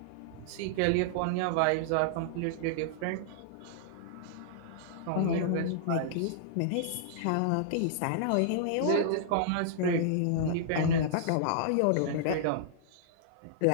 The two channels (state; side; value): different; both; correlation -0.01